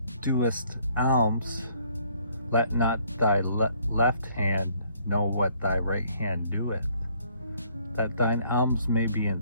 doest alms, let not thy left hand know what thy right hand doeth, that thine alms may be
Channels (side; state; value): both; inverted; correlation -0.64